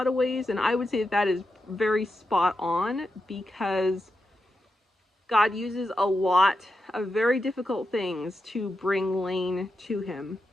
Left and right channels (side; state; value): both; normal; correlation 0.87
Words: of ways, and I would say that is very spot on, because God uses a lot of very difficult things to bring Lane to him,